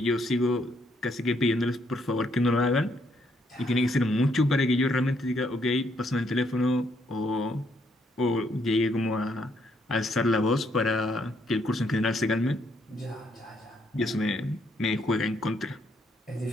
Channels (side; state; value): both; normal; correlation 0.72